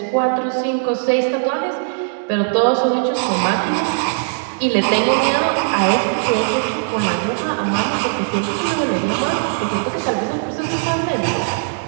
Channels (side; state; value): left; silent; 65 dB below the other